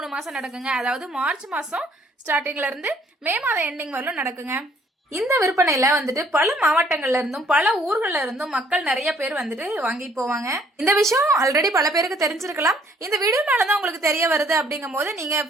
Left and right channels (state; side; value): normal; both; correlation 0.62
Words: மாசம் நடக்குங்க. அதாவது மார்ச் மாசம் ஸ்டார்டிங்ல இருந்து மே மாதம் எண்டிங் வரலும் நடக்குங்க. இந்த விற்பனையில வந்துட்டு பல மாவட்டங்கள்ல இருந்தும் பல ஊர்கள்ல இருந்தும் மக்கள் நிறைய பேர் வந்துட்டு வாங்கி போவாங்க. இந்த விஷயம் ஆல்ரெடி பல பேருக்கு தெரிஞ்சிருக்கலாம். இந்த வீடியோனாலதான் உங்களுக்கு தெரிய வருது அப்படிங்கும் போது நீங்க